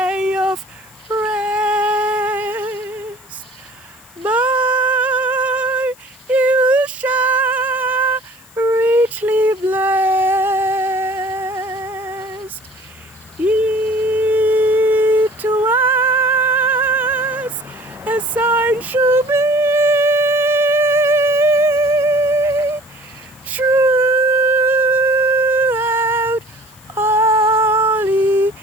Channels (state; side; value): noise; left; hiss, 26 dB below the sound